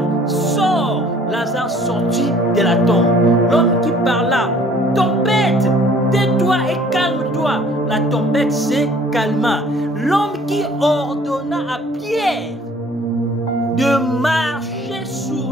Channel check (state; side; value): normal; both; correlation 0.55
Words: sort. Lazare sortit de la tombe. L'homme qui parla, tempête, tais-toi et calme-toi. La tempête s'est calma. L'homme qui ordonna à Pierre de marcher